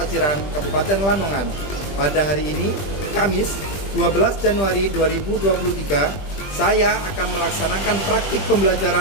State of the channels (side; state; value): right; late; 20 ms